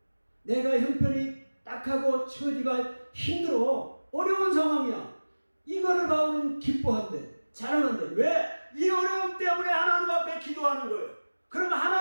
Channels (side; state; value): both; inverted; correlation -1.00